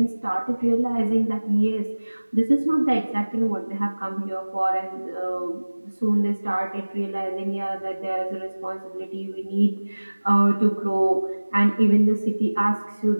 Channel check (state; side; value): inverted; both; correlation -1.00